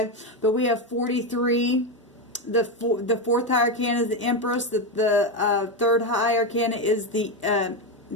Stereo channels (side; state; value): both; normal; correlation 0.11